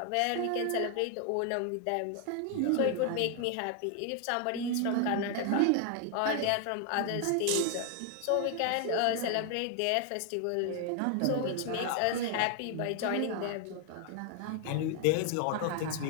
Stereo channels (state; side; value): different; both; correlation 0.00